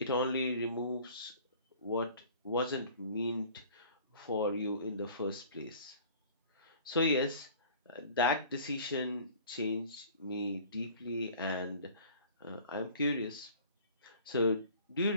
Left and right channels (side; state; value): both; inverted; correlation -0.48